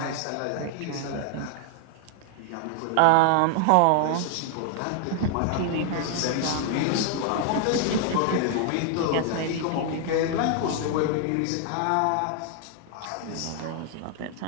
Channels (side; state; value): both; different; correlation 0.00